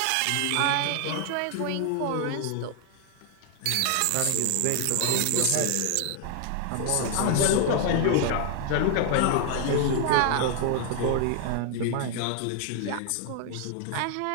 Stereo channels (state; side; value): different; both; correlation 0.00